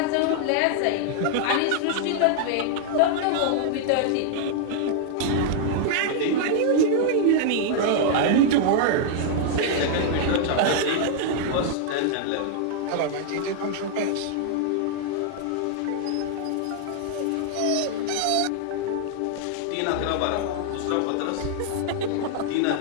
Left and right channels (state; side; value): different; both; correlation -0.01